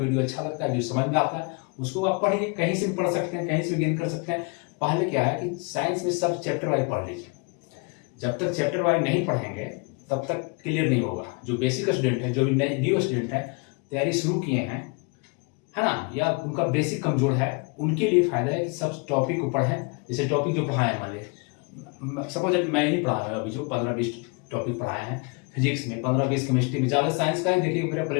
अच्छा लगता है, जो समझ में आता है उसको आप पढ़िए। कहीं से भी पढ़ सकते हैं, कहीं से भी गेन कर सकते हैं। पहले क्या है कि साइंस में सब चैप्टर वाइज पढ़ लीजिए। जब तक चैप्टर वाइज नहीं पढ़ेंगे तब तक क्लियर नहीं होगा। जो बेसिक स्टूडेंट है, जो भी न्यू स्टूडेंट है, तैयारी शुरू किए हैं, है ना, या उनका बेसिक कमजोर है, उनके लिए फायदा है कि सब टॉपिक को पढ़ें। जैसे टॉपिक जो पढ़ाए हैं, मान लीजिए सपोज मैं ही पढ़ाया अभी, जो 15-20 टॉपिक पढ़ाए हैं फिजिक्स में, 15-20 केमिस्ट्री में, ज़्यादा साइंस का ही देखिए मेरा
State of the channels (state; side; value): quieter; right; 31.6 dB